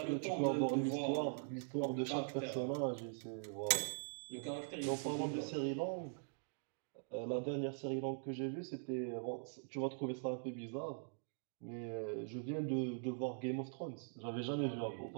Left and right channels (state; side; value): silent; left; digital silence